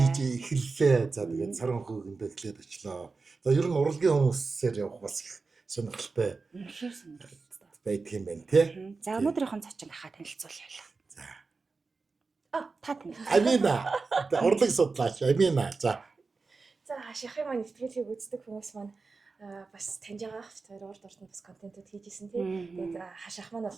эхэллээ. За тэгээд саран хөөгэндөө эхлээд очлоо. За ер нь урлагийн хүмүүсээр явах бас их сонирхолтой. Үнэхээр сонирхолтой байдаг юм байна тий. За өнөөдрийнхэн цочин ахаа танилцуулъя. За. Та тань. Амина. Урлаг судлаач Амина. За. За хашихын маань нэвтрүүлгийг үздэг хүмүүс маань бас таньж байгаа хоёр урд ордонд бас контентууд хийж исэн тийм. Тэгээд хаших маань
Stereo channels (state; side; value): quieter; left; 4.2 dB